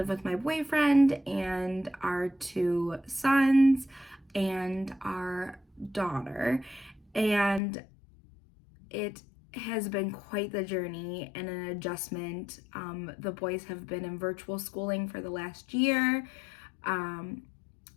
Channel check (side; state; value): right; drops out; at 7.6 s